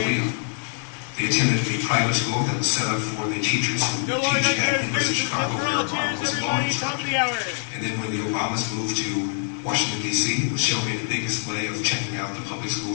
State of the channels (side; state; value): right; silent; 62 dB below the other